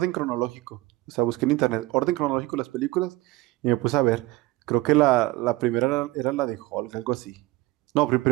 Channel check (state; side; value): quieter; left; 19.4 dB